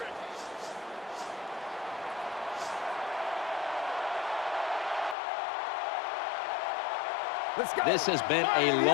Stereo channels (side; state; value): right; drops out; at 5.2 s